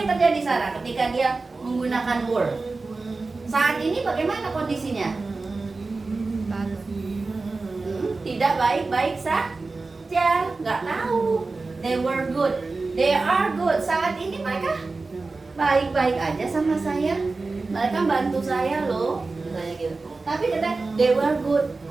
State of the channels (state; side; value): quieter; left; 3.7 dB